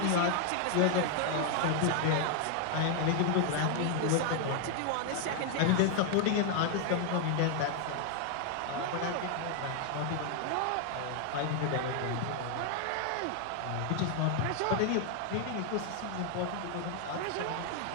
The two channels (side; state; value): both; different; correlation 0.00